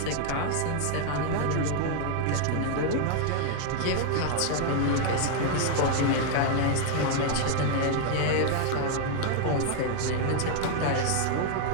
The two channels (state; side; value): different; both; correlation 0.00